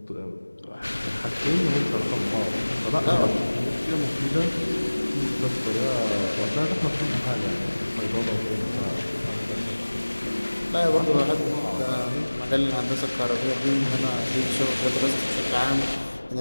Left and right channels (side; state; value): both; inverted; correlation -1.00